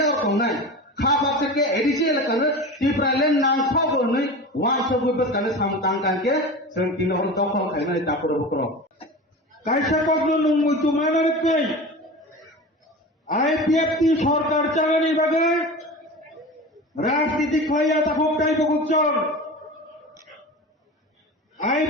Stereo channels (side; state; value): both; normal; correlation 0.31